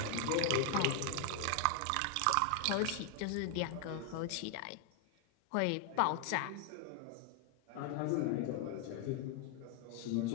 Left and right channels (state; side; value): different; both; correlation 0.00